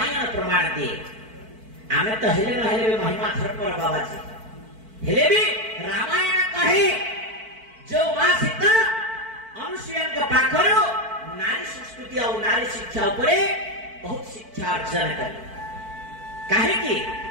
प्रमाण दिए आमे तो हेले न हेले महिमा धर्म पर बाबाजी हेले भी रामायण कहे जो मां सीता अनुसुया के पाखरो नारी संस्कृति और नारी शिक्षा उपरे बहुत शिक्षा अर्जन करी काहे कि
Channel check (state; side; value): late; left; 4.5 ms